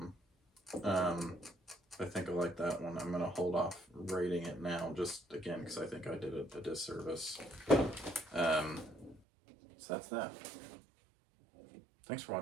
I think I like that one. I'm gonna hold off rating it now, just again, because I think I did it a disservice. So that's that. Thanks for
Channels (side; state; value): left; drops out; at 9.2 s